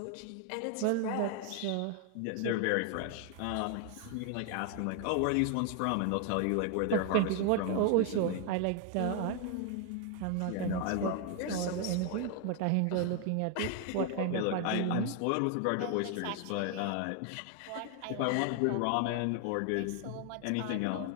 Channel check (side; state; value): both; different; correlation 0.01